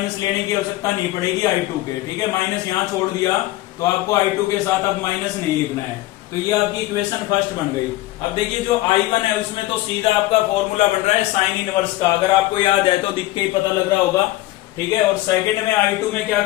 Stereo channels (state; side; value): quieter; right; 17.4 dB